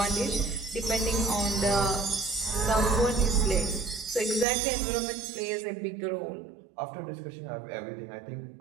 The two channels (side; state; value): left; drops out; at 4.5 s